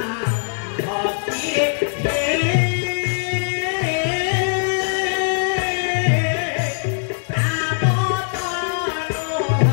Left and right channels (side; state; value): right; silent; digital silence